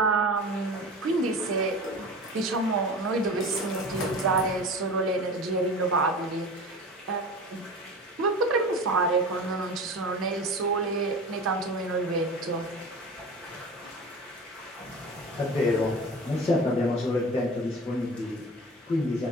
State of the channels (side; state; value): both; normal; correlation 0.34